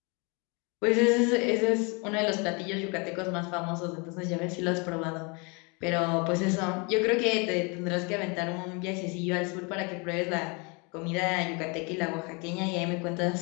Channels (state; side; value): quieter; right; 31.2 dB